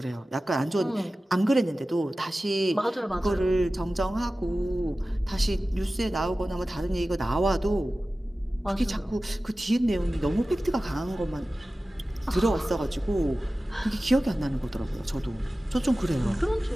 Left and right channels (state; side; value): normal; both; correlation 0.96